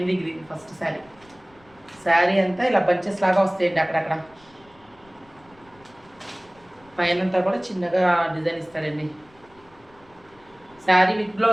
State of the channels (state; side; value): noise; left; rumble, 29 dB below the sound